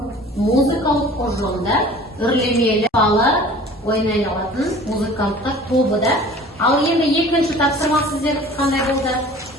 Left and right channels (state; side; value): normal; both; correlation 0.46